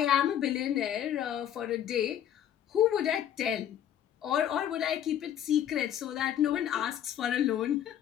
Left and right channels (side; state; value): right; quieter; 10.4 dB